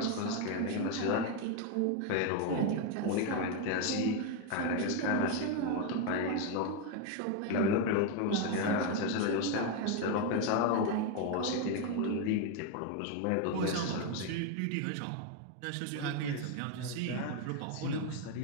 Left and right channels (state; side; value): different; both; correlation 0.02